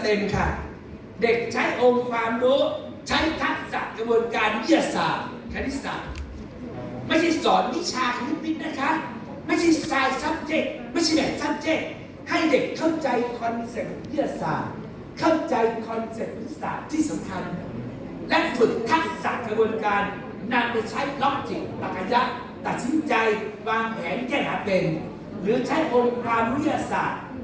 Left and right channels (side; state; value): both; identical; correlation 1.00